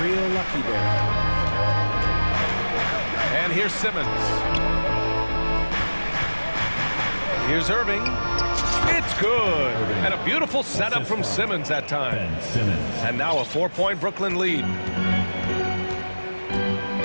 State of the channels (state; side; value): inverted; both; correlation -1.00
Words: real lucky there. And here's Simmons. Here's Irving. It's good. And a beautiful setup from Simmons that time. And now a 4-point Brooklyn lead.